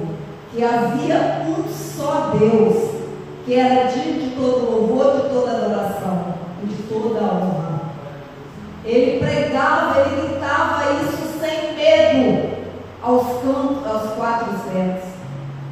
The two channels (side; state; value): both; identical; correlation 1.00